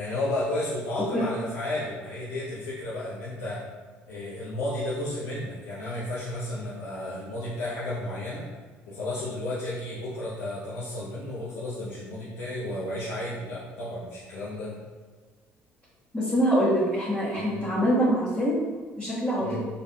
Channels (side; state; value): both; normal; correlation 0.57